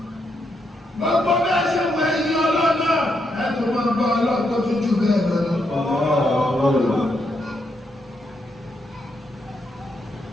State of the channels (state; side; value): normal; both; correlation 0.80